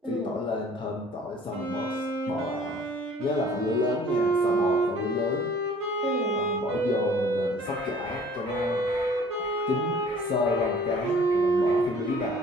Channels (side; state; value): both; normal; correlation 0.52